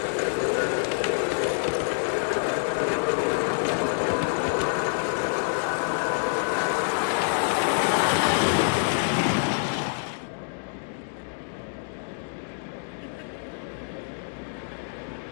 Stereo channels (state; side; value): silent; right; digital silence